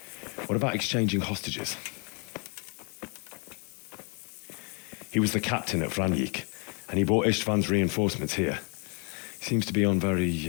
What about exchanging hostages? He was the captain at Franjik, and he brought Istvan's reinforcements here. He seems to be on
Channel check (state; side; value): quieter; right; 35.8 dB